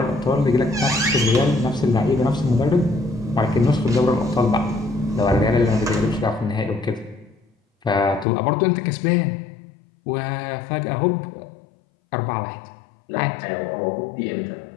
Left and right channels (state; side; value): drops out; right; at 8.2 s